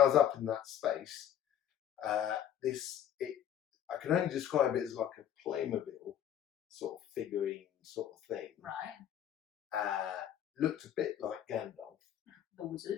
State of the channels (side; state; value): right; quieter; 10.3 dB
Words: was up in that space, I can only describe it as like a Playmobil sort of figurine sort of thing. Right. Looked a bit like Gandalf. The